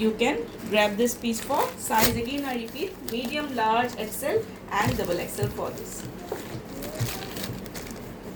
can grab this piece for size, again I repeat, medium, large, XL and double XL for this.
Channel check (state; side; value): identical; both; correlation 1.00